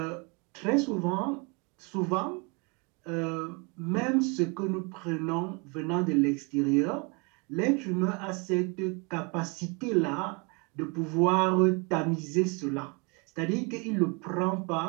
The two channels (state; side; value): quieter; left; 31.5 dB